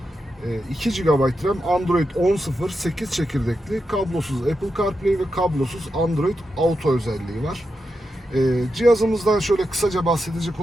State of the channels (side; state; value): both; normal; correlation 0.87